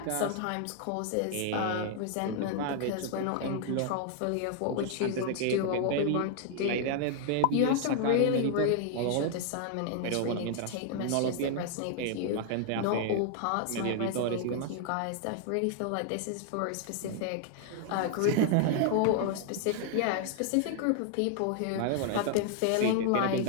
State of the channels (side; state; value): both; different; correlation 0.00